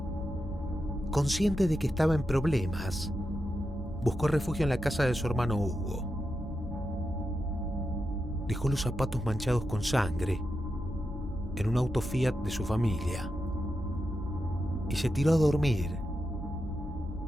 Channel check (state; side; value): normal; both; correlation 0.88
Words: Consciente de que estaba en problemas, buscó refugio en la casa de su hermano Hugo. Dejó los zapatos manchados con sangre en un auto Fiat de su familia y se tiró a dormir